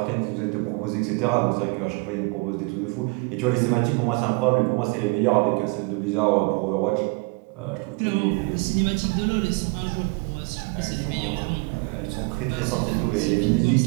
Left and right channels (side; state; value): left; quieter; 29.7 dB